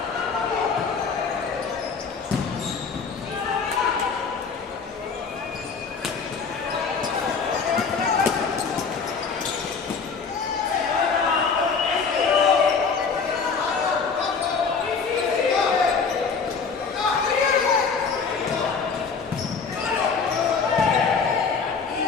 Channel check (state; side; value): quieter; right; 5.4 dB